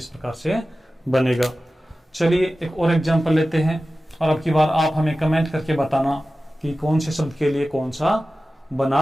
प्रकार से बनेगा। चलिए एक और एग्जांपल लेते हैं और अब की बार आप हमें कमेंट करके बताना कि कौन से शब्द के लिए कौन सा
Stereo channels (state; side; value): normal; both; correlation 0.95